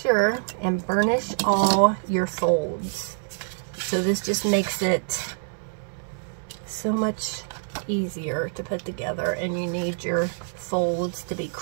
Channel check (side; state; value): left; silent; digital silence